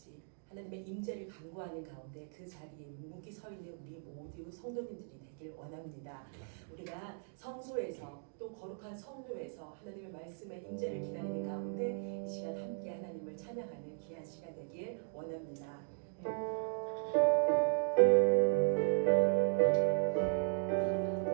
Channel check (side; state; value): left; silent; digital silence